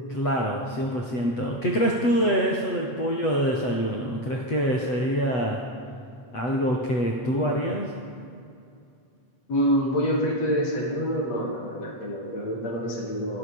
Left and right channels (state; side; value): late; right; 8.1 ms